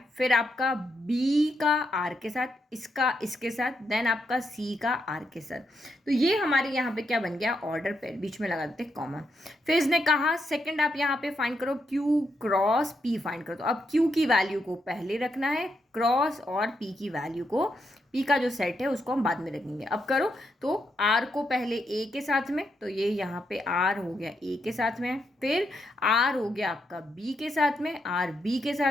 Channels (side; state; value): both; normal; correlation 0.80